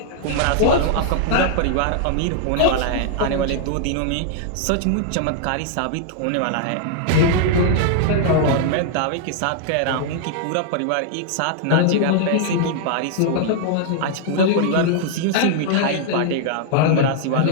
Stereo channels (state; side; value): different; both; correlation -0.01